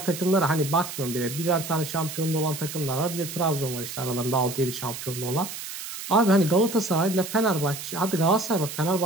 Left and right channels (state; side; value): noise; right; hiss, 9 dB below the sound